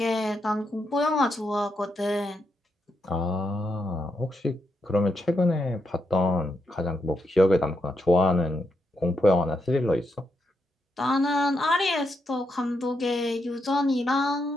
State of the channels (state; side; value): normal; both; correlation 0.82